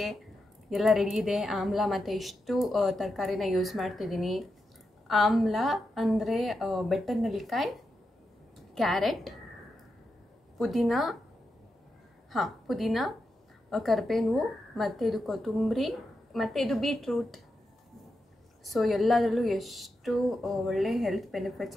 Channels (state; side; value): normal; both; correlation 0.87